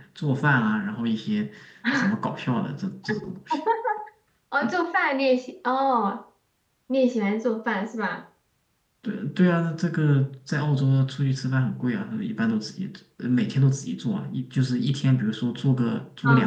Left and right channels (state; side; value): identical; both; correlation 1.00